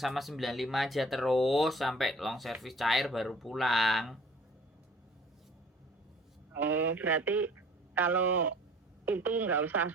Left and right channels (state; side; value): normal; both; correlation 0.50